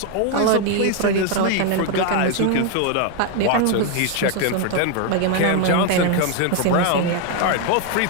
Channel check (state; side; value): different; both; correlation 0.01